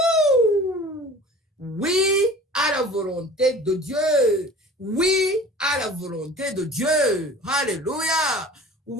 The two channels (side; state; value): both; normal; correlation 0.43